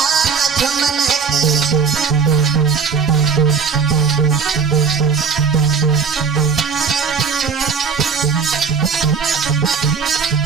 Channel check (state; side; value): quieter; left; 5.9 dB